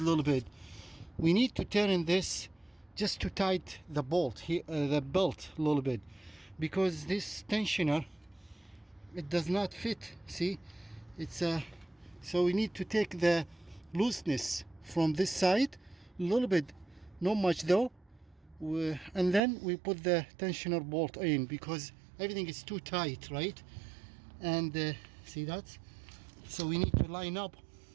little bit. We need to turn this just to tight the bolt here, the belt a little bit, because this tensioner, it does not fit. See, it's so we need to take the looseness from this side a little bit, not much though, and then we put the tensioner bolt in, because everything is too tight, right? And see that, so we need to line up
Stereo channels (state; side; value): drops out; left; at 19.4 s